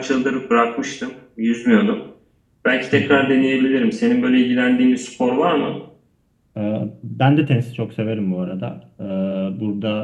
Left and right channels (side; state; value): both; identical; correlation 1.00